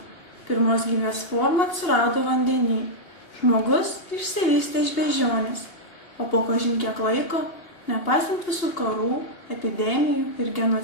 Pirmos gyvės forma atsirado vandenyje. Žmogus išsivystė iš beždžionės, o po kažin kiek laiko, nepaisant visų karų, epidemijų ir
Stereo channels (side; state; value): right; late; 2.8 ms